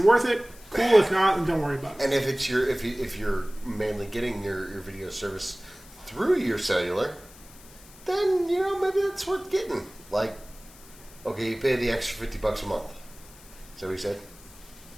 worth it? Cool. If not, then don't worry about it. And if you're mainly getting your video service through your cellular, then maybe it's worth getting. Like, okay, you pay the extra $50 a month. Is that what you said?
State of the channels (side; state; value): left; noise; hiss, 22 dB below the sound